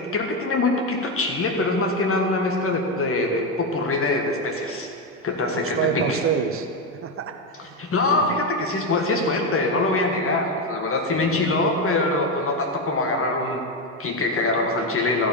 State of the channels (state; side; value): normal; both; correlation 0.09